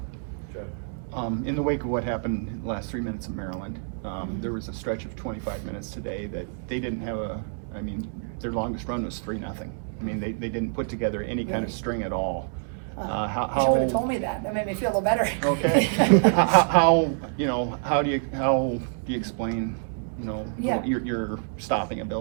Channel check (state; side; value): silent; left; digital silence